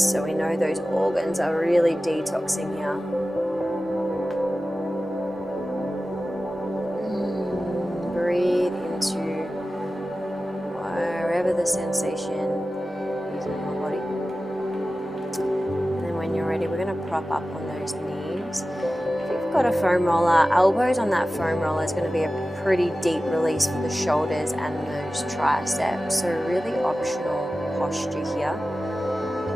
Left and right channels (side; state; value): both; normal; correlation 0.95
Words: so we know those organs are really detoxing here. Breathe into wherever the sensation is in your body. And then when you're ready, we're going to prop up on those knees. If you've got a foam roller, elbows on that foam roller is going to be a pretty deep release for the shoulders and those triceps. So really optional posture here.